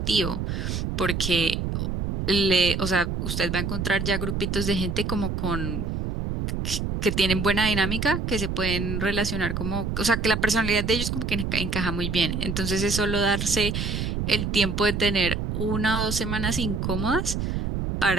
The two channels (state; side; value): noise; right; rumble, 2 dB below the sound